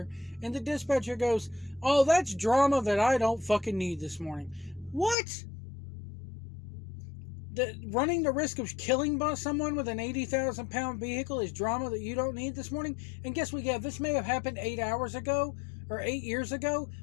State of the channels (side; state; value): right; drops out; at 5.2 s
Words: and the dispatcher goes, oh, that's drama that I don't fucking need this morning. What? Running the risk of killing someone with an 80,000 pound vehicle is drama that you don't need this morning? And guess what? Yeah, this may have happened 8 hours ago or 8 years ago,